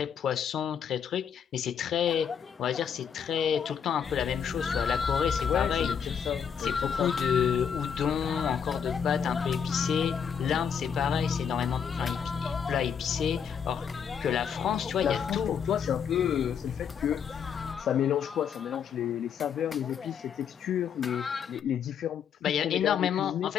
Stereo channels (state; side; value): quieter; right; 7.5 dB